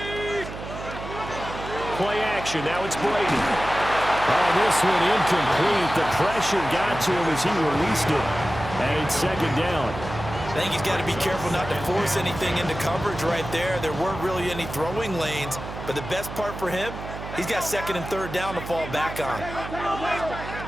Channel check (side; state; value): right; noise; hum, 10 dB below the sound